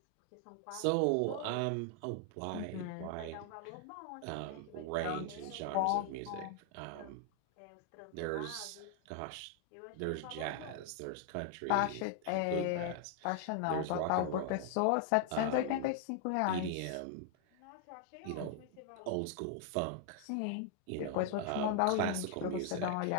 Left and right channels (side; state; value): both; different; correlation 0.00